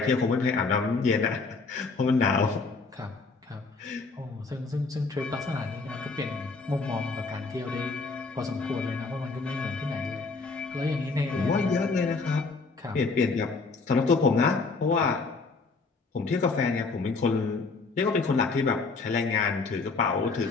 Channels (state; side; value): quieter; right; 4.1 dB